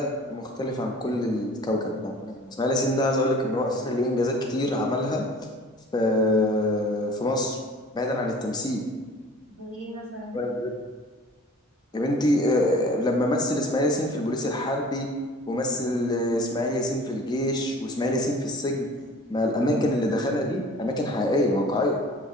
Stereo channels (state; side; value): normal; both; correlation 0.46